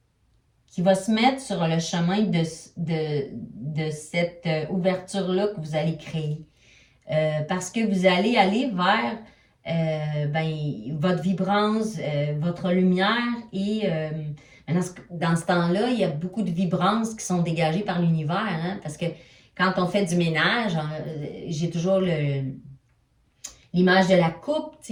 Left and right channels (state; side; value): identical; both; correlation 1.00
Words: se mettre sur le chemin de cette ouverture-là que vous allez créer. Parce que vous allez aller vers votre vibrance, votre lumière et dans ce temps-là, il y a beaucoup de vibrances qui sont dégagées par l'univers, hein, parce que quand on fait du ménage, j'ai toujours l'image de la coupe,